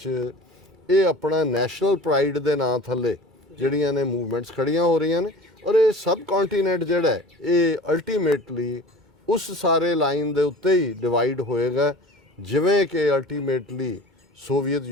ਇਹ ਆਪਣਾ ਨੈਸ਼ਨਲ ਪ੍ਰਾਈਡ ਦੇ ਨਾਂ ਥੱਲੇ ਜਿਹੜੀਆਂ ਨੇ ਮੂਵਮੈਂਟਸ ਖੜੀਆਂ ਹੋ ਰਹੀਆਂ ਨੇ। ਔਰ ਇਹ ਸਬ ਕੰਟੀਨੈਂਟ ਜਿਹੜਾ ਹੈ ਇਹ ਅਲਟੀਮੇਟਲੀ ਉਸ ਸਾਰੇ ਲਾਈਨ ਦੇ ਉੱਤੇ ਹੀ ਡਿਵਾਈਡ ਹੋਏਗਾ, ਜਿਵੇਂ ਕਿ ਅਲਟੀਮੇਟਲੀ ਸੋਵੀਅਤ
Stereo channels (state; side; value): normal; both; correlation 0.41